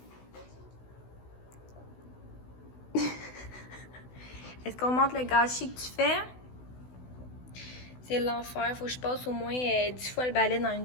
Est-ce qu'on montre le gâchis que tu fais? C'est l'enfer. Faut que je passe au moins 10 fois le balai dans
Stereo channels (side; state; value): right; late; 16 ms